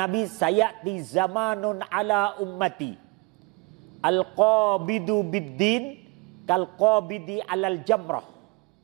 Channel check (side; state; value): left; quieter; 27.0 dB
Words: sayati zamanun ala ummati al-qabidu bid-din kal-qabidi alal jamrah.